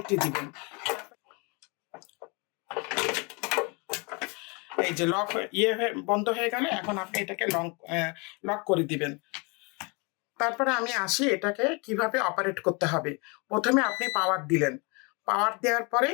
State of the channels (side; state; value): right; quieter; 30.9 dB